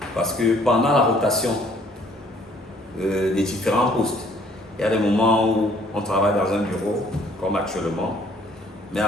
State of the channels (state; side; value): normal; both; correlation 0.60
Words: parce que pendant la rotation des différents postes, il y a des moments où on travaille dans un bureau, comme actuellement, mais